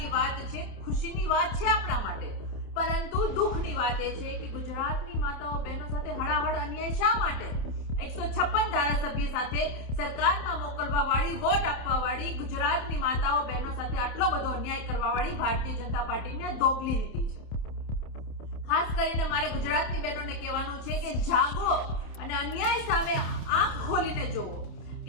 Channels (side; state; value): right; late; 28 ms